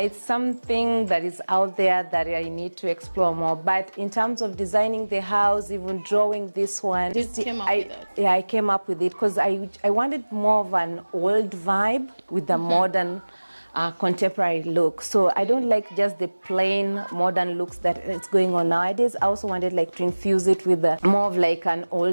something that is out there that I need to explore more. But in terms of designing the house, even drawing this one, I came up with it because I wanted more of an old vibe with the modern contemporary look. So I don't like just the plain modern looks that it's going on nowadays. I also wanted like to infuse it with more of like an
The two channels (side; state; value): both; inverted; correlation -1.00